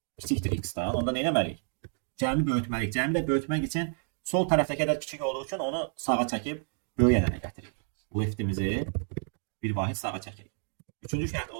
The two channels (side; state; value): left; silent; 57 dB below the other